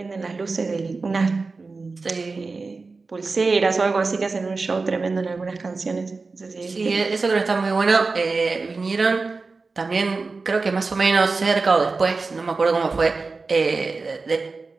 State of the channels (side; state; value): left; quieter; 4.0 dB